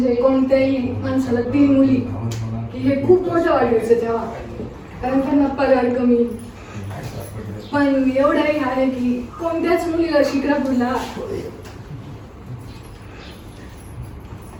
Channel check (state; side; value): identical; both; correlation 1.00